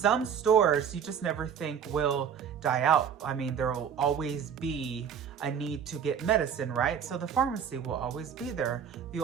stores you just never think will die out. I mean, there will always be a need to get medicine, right? So the pharmacy will always be there. You'll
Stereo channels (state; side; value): quieter; left; 7.8 dB